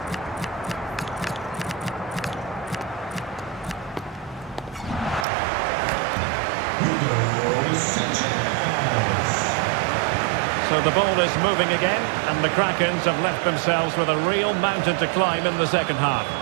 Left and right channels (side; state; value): left; drops out; at 5.2 s